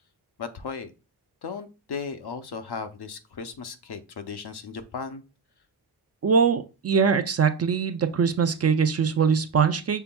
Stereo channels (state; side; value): quieter; left; 5.1 dB